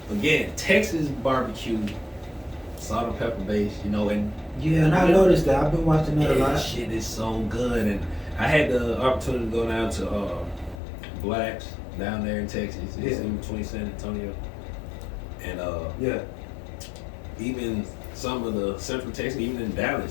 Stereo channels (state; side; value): drops out; right; at 10.8 s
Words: Again, Texas barbecue, salt and pepper based, you know, and Yeah, and I noticed that. I've been watching that a lot. that shit is so good. And I had the opportunity to go down to Blacks down there in Texas. It's in between San Antonio and Yeah. even some of the Central Texas, even in